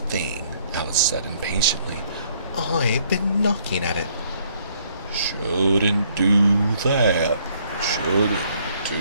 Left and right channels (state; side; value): inverted; both; correlation -0.66